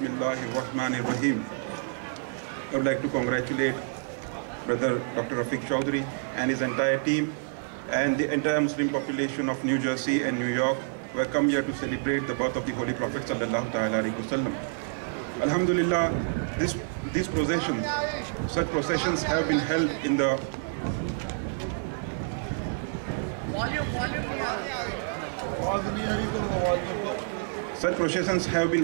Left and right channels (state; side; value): silent; left; digital silence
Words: rahmanir rahim. I would like to congratulate Brother Dr. Rafiq Chaudhry and his entire team and the entire Muslim population of New Jersey and New York who have come here to celebrate the birth of the Holy Prophet sallallahu ta'ala alaihi wasallam. Alhamdulillah, these processions, such processions have been held in